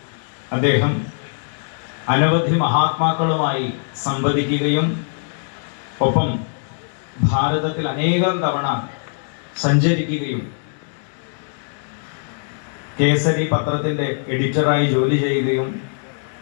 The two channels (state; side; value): silent; right; 65 dB below the other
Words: അദ്ദേഹം അനവധി മഹാത്മാക്കളുമായി സംവദിക്കുകയും ഒപ്പം ഭാരതത്തിൽ അനേകം തവണ സഞ്ചരിക്കുകയും കേസരി പത്രത്തിൻ്റെ എഡിറ്ററായി ജോലി ചെയ്യുകയും